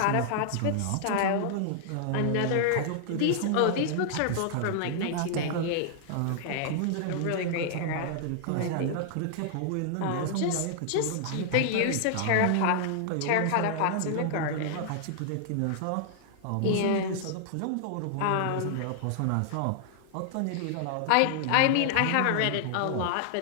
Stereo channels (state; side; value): different; both; correlation -0.01